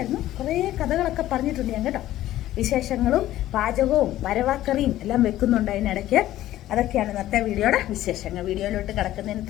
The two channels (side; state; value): right; quieter; 14.1 dB